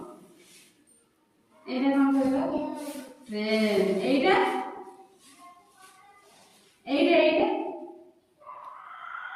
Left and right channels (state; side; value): identical; both; correlation 1.00